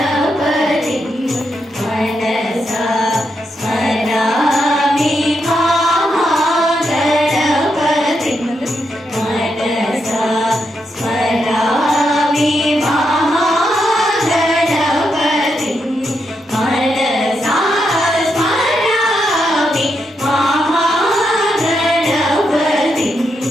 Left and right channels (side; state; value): both; normal; correlation 0.82